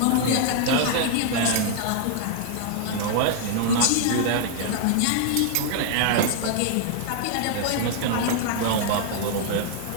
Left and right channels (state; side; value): different; both; correlation 0.00